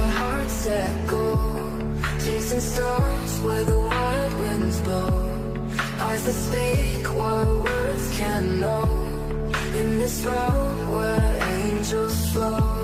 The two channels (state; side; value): identical; both; correlation 1.00